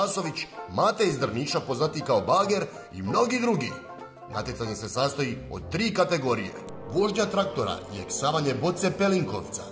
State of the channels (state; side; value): identical; both; correlation 1.00